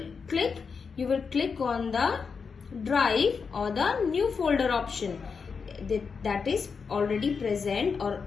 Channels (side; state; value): right; quieter; 5.5 dB